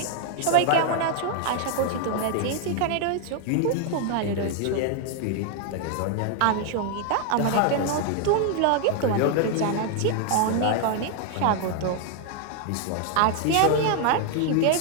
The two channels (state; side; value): different; both; correlation 0.00